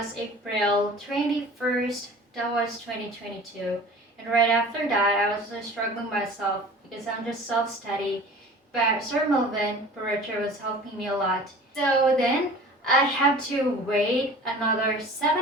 April 21st, that was 2022. And right after that, I was struggling myself because I'm just self-study. But Sir Melvin Barreto was helping me a lot. So then I had to wait another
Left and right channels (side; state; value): both; normal; correlation 0.42